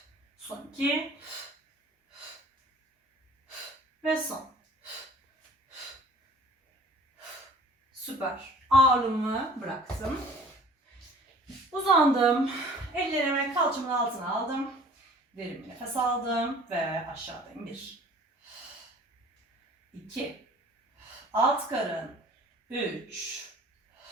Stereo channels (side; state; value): both; normal; correlation 0.49